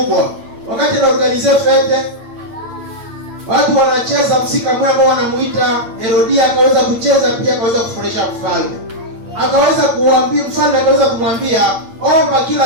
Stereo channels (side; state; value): left; late; 8.7 ms